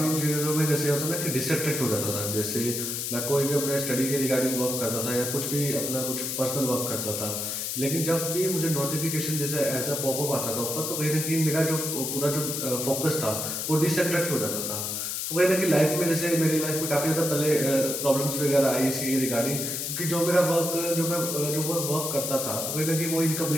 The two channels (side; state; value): left; noise; hiss, 2 dB below the sound